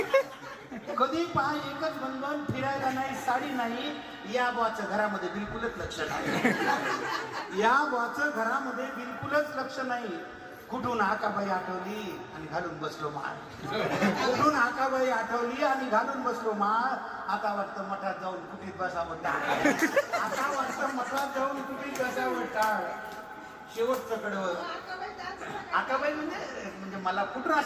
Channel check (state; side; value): identical; both; correlation 1.00